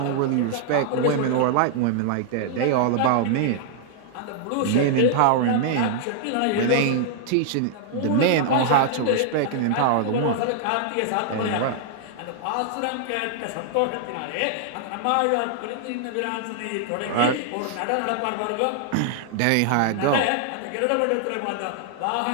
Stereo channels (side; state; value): both; different; correlation -0.01